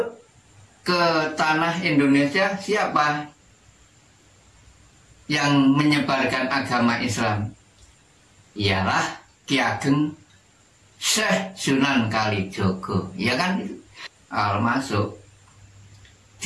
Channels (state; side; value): identical; both; correlation 1.00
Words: ke tanah Indonesia siapa? Yang menyebarkan agama Islam ialah Ki Ageng Syekh Sunan Kalijogo, ya kan? Masuk